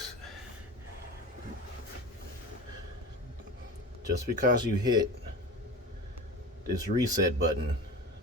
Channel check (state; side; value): normal; both; correlation 0.31